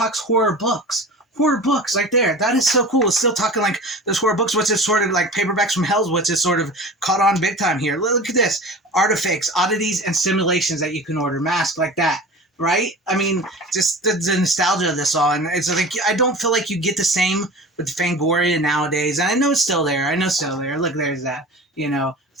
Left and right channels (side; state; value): both; normal; correlation 0.36